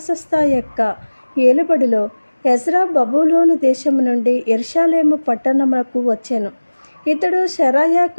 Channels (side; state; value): both; inverted; correlation -1.00